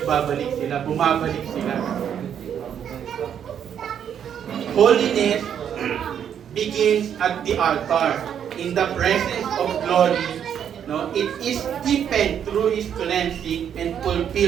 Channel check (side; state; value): left; quieter; 8.8 dB